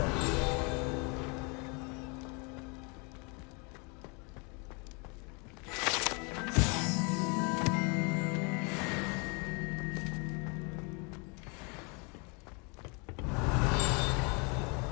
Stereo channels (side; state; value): right; quieter; 32.6 dB